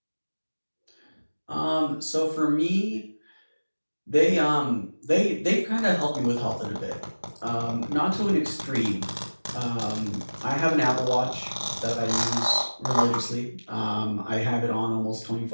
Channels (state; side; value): inverted; both; correlation -1.00